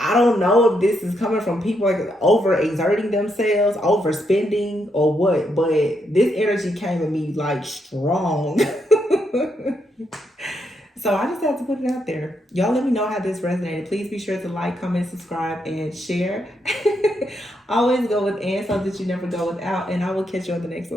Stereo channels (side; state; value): both; normal; correlation 0.79